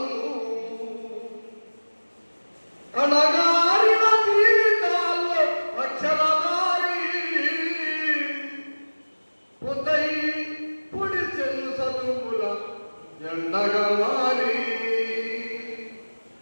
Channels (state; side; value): inverted; both; correlation -1.00